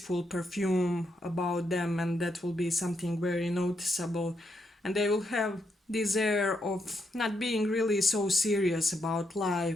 perfume about them, and that will be something very noticeable. And they will have this air of not being really so serious about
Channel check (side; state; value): both; normal; correlation 0.79